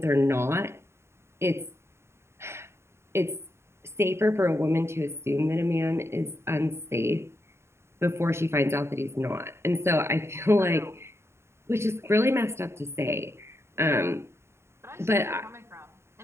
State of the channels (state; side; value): late; left; 0.13 ms